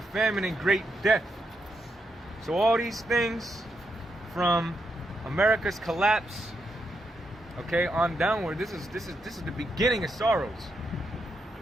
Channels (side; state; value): both; normal; correlation 0.82